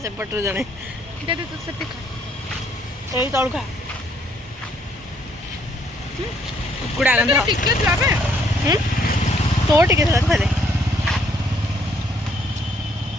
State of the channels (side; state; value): both; normal; correlation 0.68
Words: ସେପଟରୁ ଜଣେ ଦେ ତୁ ସେଠି ଖା ଏଇ ତଳୁ ଖା କୁକୁଡ଼ା ଗନ୍ଧ ଟିକେ ଥିଲା ବେ ତୋ ଟିକେ ଥିଲା ତୁ ଖାଇଦେ